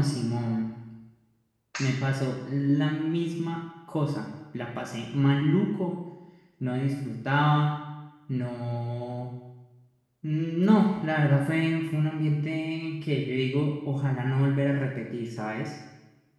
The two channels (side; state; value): both; identical; correlation 1.00